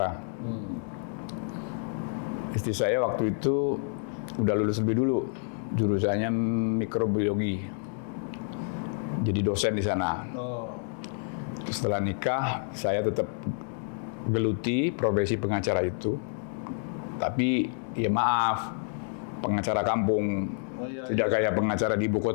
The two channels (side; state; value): right; silent; 59 dB below the other